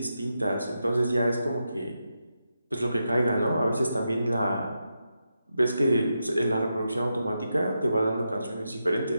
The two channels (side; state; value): both; inverted; correlation -0.87